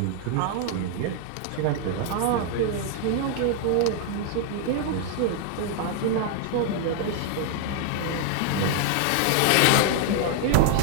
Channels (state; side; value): different; both; correlation 0.00